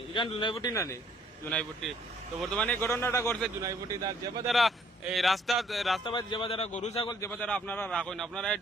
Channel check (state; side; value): normal; both; correlation 0.63